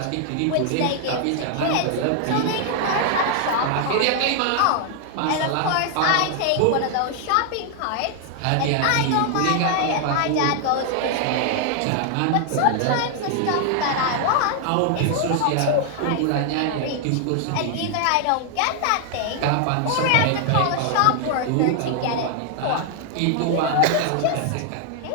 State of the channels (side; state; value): both; different; correlation 0.00